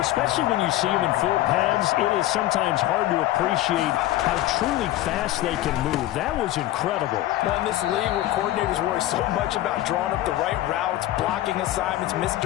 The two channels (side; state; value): right; quieter; 15.0 dB